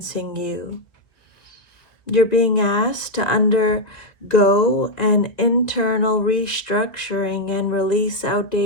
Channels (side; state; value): right; late; 1.8 ms